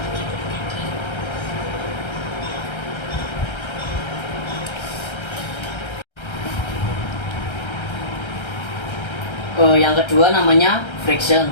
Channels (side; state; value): right; late; 1.3 ms